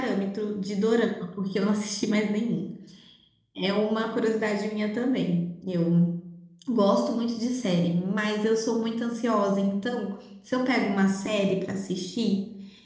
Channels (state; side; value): identical; both; correlation 1.00